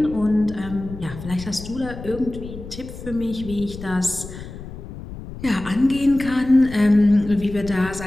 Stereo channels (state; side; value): noise; left; rumble, 12 dB below the sound